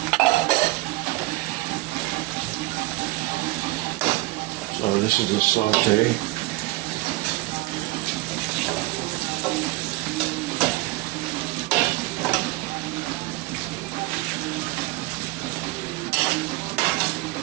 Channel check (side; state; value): left; quieter; 20.4 dB